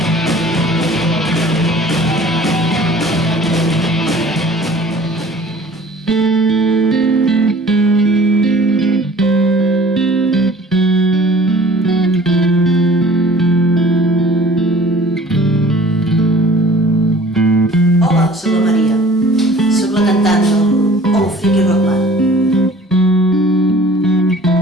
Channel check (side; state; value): both; normal; correlation 0.49